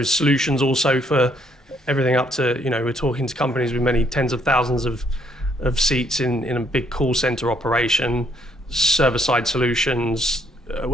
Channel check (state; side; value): normal; both; correlation 0.69